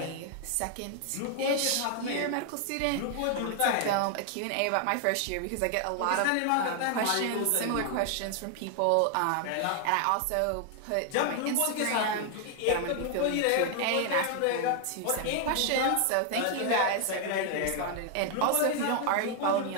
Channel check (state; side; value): different; both; correlation 0.00